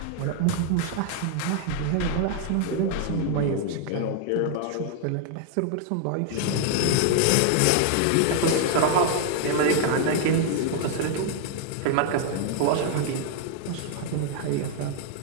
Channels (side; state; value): both; different; correlation 0.00